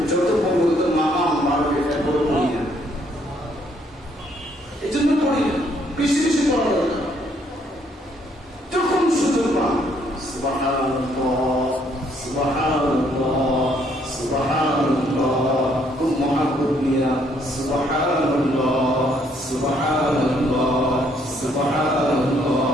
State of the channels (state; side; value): normal; both; correlation 0.68